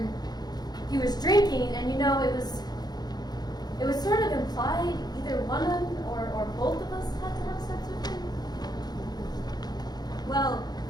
he was drinking, and you know, it was sort of implied either one of them or both of us had to have sex with him. Well,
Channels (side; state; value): right; late; 0.19 ms